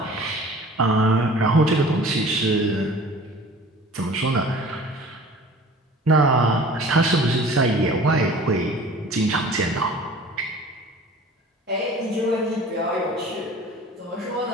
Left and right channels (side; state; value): both; normal; correlation 0.45